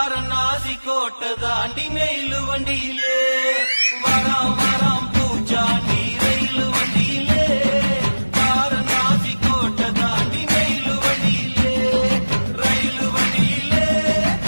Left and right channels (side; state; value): both; inverted; correlation -1.00